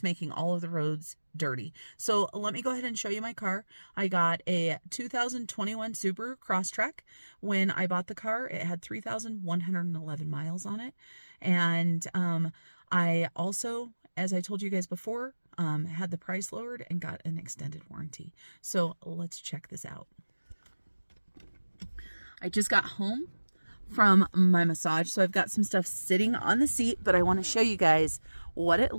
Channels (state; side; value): inverted; both; correlation -1.00